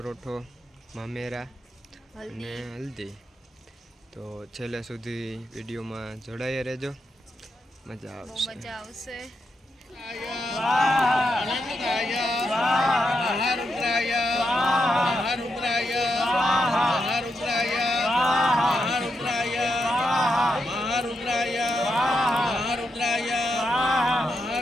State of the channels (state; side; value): normal; both; correlation 0.83